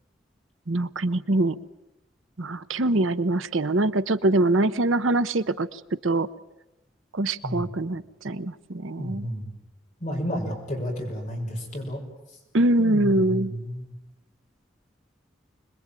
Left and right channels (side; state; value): both; normal; correlation 0.48